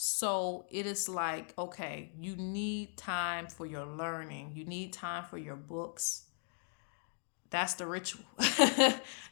it is like, okay, you need time for your learning. You need time for your books. That's the ritual.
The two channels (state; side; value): silent; right; 53 dB below the other